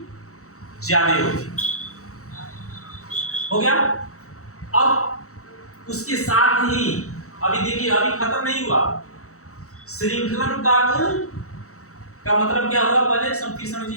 ज्यादा होगी। हो गया। अब उसके साथ ही अभी देखिए, अभी खत्म नहीं हुआ। श्रृंखलन का गुण का मतलब क्या होगा, पहले फिर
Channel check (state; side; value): late; right; 0.64 ms